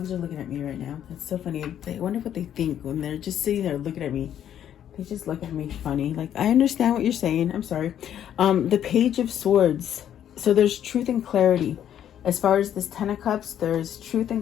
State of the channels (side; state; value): right; quieter; 10.2 dB